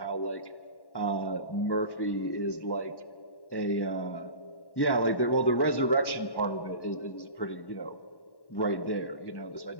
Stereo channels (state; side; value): late; right; 1.1 ms